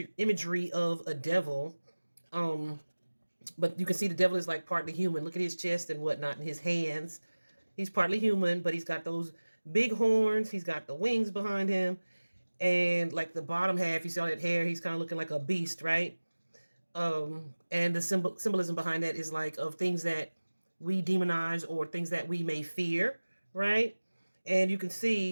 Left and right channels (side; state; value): both; inverted; correlation -1.00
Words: of a devil. But you can see the devil is like partly human. Look at his chest and whatnot and his hands. He's partly human, but he's got those big horns. He's got the wings behind him. And like the bottom half, you see all that hair, he's kind of looking like a beast, right? And the symbolism behind that is like of things that we demonize or things that we may fear, right? And you can